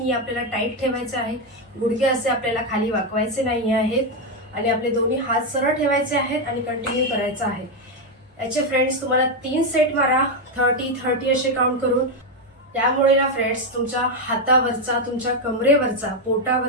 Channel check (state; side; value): normal; both; correlation 0.05